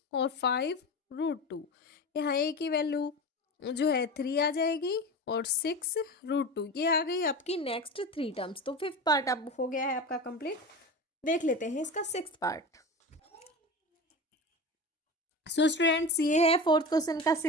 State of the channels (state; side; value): normal; both; correlation 0.28